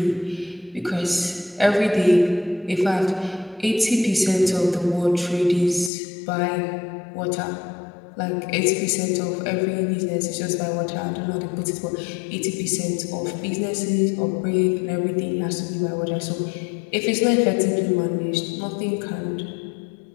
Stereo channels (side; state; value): right; drops out; at 5.9 s